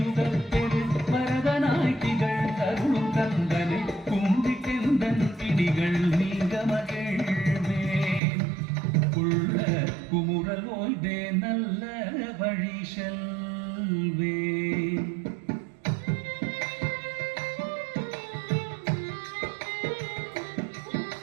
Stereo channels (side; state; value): left; drops out; at 8.2 s